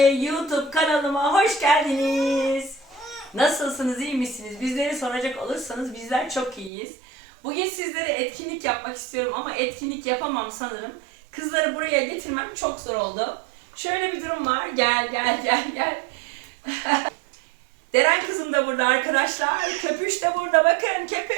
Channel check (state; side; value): drops out; left; at 6.7 s